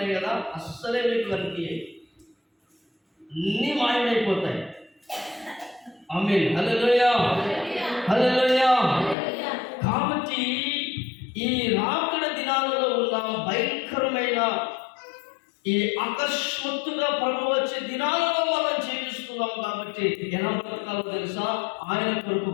కదా, అస్సలే మీకు కనిపించాయి, అన్నీ మాయమైపోతాయి. ఆమేన్. హల్లెలూయా. కాబట్టి ఈ రాకడ దినాలలో ఉన్న భయంకరమైన ఈ అకస్మాత్తుగా ప్రభు వచ్చే దినాలలో మనం జీవిస్తున్నాం. కాబట్టి ఎలా బ్రతకాలో తెలుసా? ఆయన కొరకు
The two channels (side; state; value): right; drops out; at 9.2 s